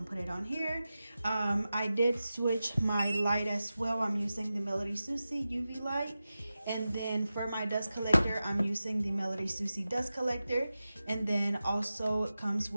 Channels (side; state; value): both; inverted; correlation -0.94